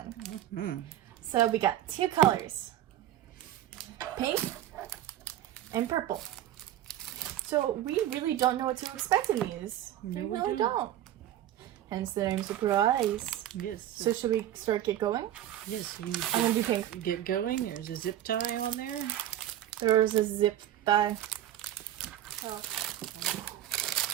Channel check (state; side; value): quieter; left; 12.3 dB